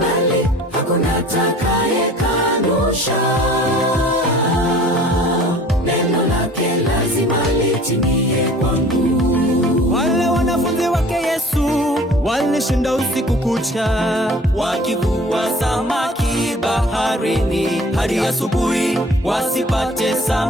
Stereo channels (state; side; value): normal; both; correlation 0.48